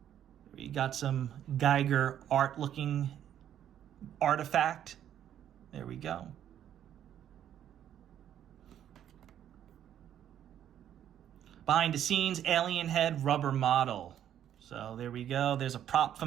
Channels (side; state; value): left; quieter; 10.4 dB